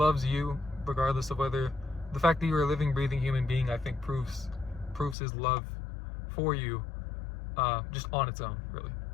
you, regardless of whether the fact that you're a living, breathing human being, I think proves His love for you, just on its own, really.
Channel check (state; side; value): drops out; right; at 5.2 s